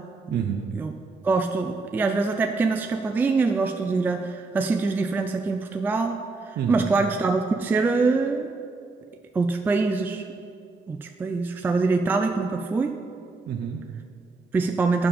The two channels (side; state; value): left; quieter; 3.7 dB